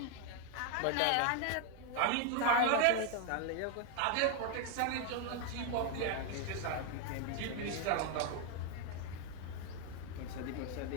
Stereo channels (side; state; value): both; different; correlation 0.01